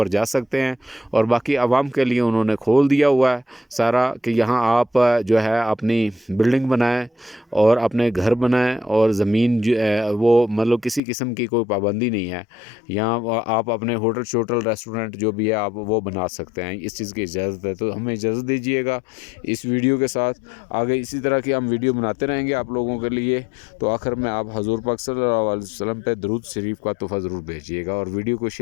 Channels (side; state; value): right; drops out; at 11.0 s